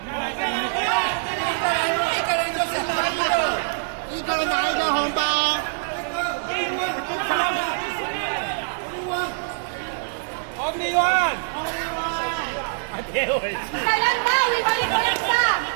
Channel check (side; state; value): left; silent; digital silence